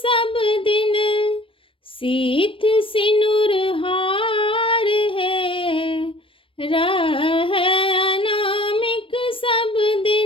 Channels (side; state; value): right; late; 0.25 ms